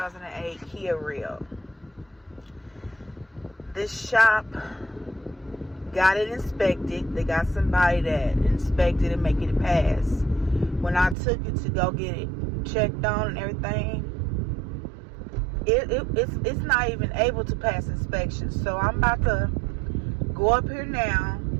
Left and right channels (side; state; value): left; drops out; at 11.2 s